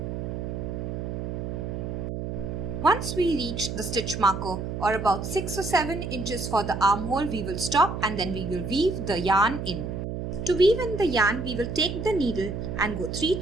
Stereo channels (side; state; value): right; noise; hum, 5 dB below the sound